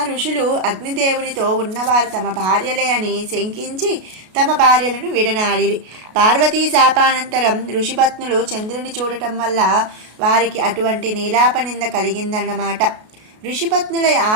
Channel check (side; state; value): left; late; 33 ms